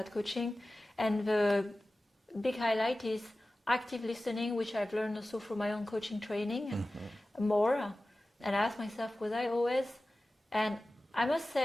coaching, and the big highlight is active listening, which I've learned also from my own coaching training more. And I asked myself, was I always? And I must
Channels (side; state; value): both; normal; correlation 0.96